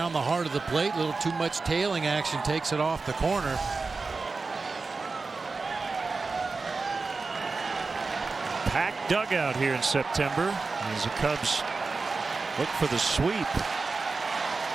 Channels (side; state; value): left; quieter; 4.1 dB